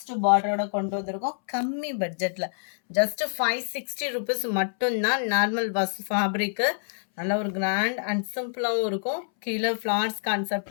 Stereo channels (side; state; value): right; silent; 60 dB below the other